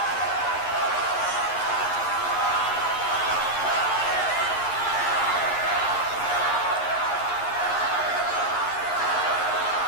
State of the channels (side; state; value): right; late; 11 ms